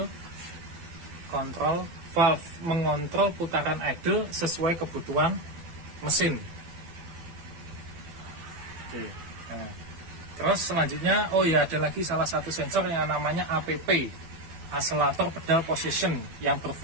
control valve, mengontrol putaran idle sesuai kebutuhan mesin. Oke. Nah, terus selanjutnya ada lagi salah satu sensor yang namanya APP, Accelerator Pedal Position, yang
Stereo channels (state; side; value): late; left; 12 ms